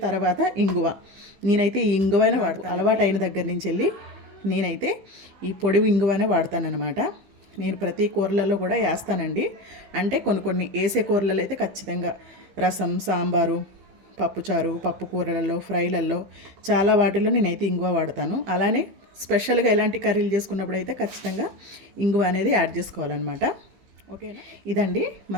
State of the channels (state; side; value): late; left; 15 ms